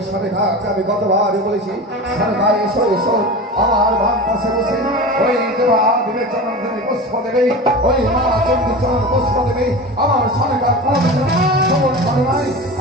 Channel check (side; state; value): both; normal; correlation 0.30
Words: সরেখাকে আমি গতবার বলেছি সরকার এসো এসো আমার বাম পাশে বসে ওই দেবা বিবেচনার পুষ্প দেবে ওই মা চন্দ্রচরণ পুষ্প দেবে আমার সরকার সমর্থন নাই